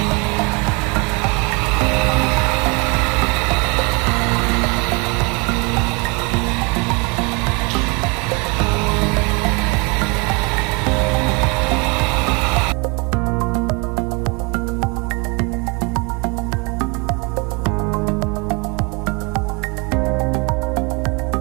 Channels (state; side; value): quieter; left; 30.3 dB